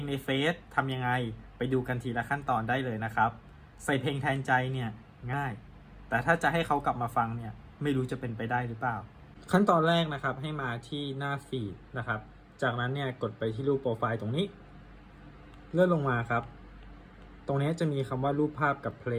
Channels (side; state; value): both; identical; correlation 1.00